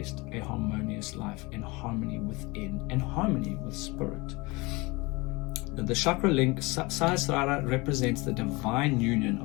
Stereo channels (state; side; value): quieter; right; 24.6 dB